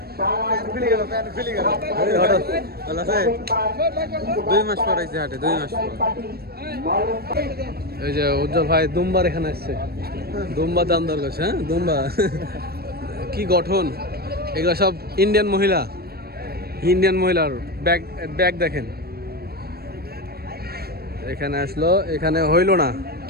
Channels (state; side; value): late; left; 0.45 ms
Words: এই যে উজ্জ্বল ভাই দুম্বার এখানে আসছে, দুম্বা দাম দর করছে। হ্যাঁ দুম্বা কি গঠন, এগুলো সব ইন্ডিয়ান মহিলা, ইন্ডিয়ান মহিলার ব্যাগ ব্যাগ দেখেন। এখানে আসলো, এখানে হইল না,